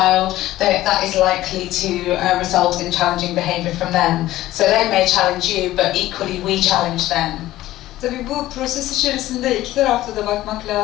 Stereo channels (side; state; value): right; quieter; 15.4 dB